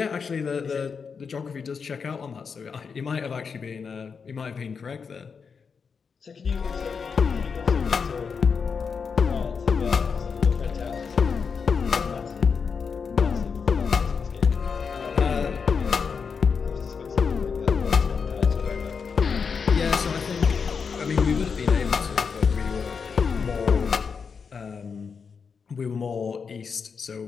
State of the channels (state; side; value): quieter; right; 5.8 dB